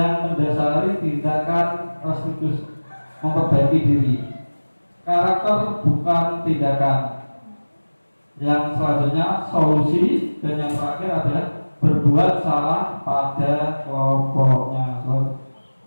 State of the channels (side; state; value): both; inverted; correlation -1.00